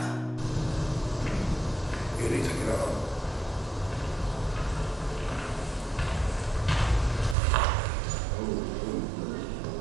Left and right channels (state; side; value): drops out; left; at 7.4 s